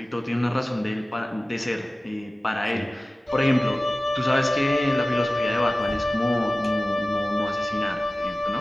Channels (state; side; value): normal; both; correlation 0.96